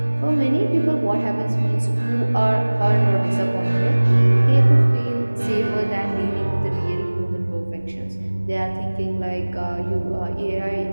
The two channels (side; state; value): both; inverted; correlation -1.00